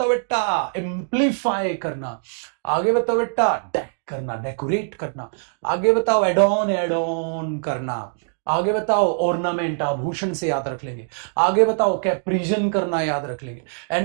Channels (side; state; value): left; silent; digital silence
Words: बेटा, एम्पलीफाई करना। आगे बताओ बेटा, डेक करना, डेकोरेट करना। आगे बताओ, एडॉन, एडॉन करना। आगे बताओ, ऑर्नामेंट, आभूषण से याद रख लेंगे। आगे बताओ, कैप्रिजन करना, याद रख लेंगे।